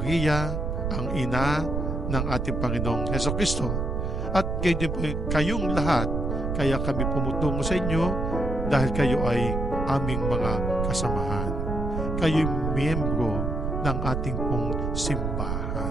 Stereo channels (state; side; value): noise; right; rumble, 1 dB below the sound